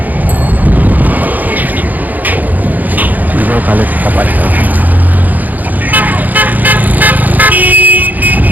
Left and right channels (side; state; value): left; late; 0.082 ms